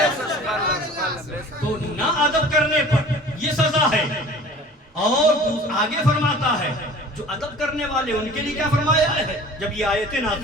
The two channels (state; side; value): normal; both; correlation 0.44